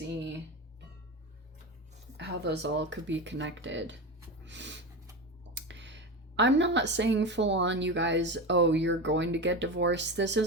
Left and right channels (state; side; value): normal; both; correlation 0.22